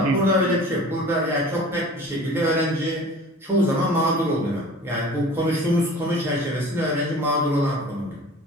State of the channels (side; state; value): both; normal; correlation 0.43